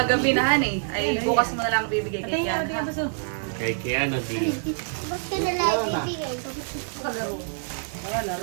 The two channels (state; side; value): silent; left; digital silence